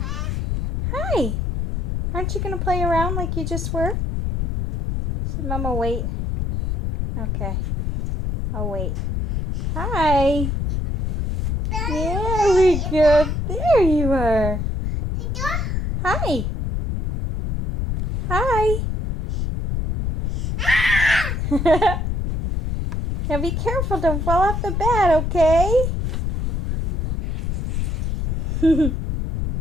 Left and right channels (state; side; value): noise; left; rumble, 1 dB below the sound